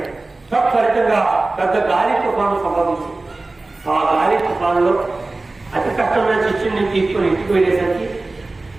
ఫలితంగా పెద్ద గాలి తుఫాను సంభవించింది. ఆ గాలి తుఫానులో అతి కష్టమైన శిష్యుని తీసుకొని ఇంటికి వెళ్ళేసరికి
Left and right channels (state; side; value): quieter; left; 3.2 dB